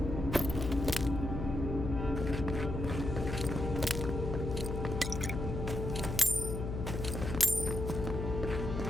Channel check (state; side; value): noise; left; hum, 4 dB below the sound